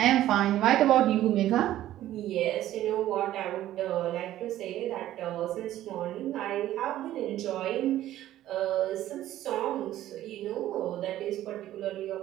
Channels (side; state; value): left; quieter; 13.5 dB